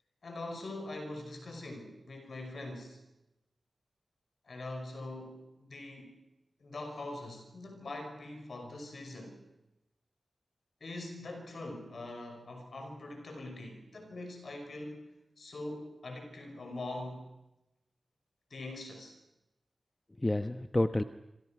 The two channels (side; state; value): both; normal; correlation 0.96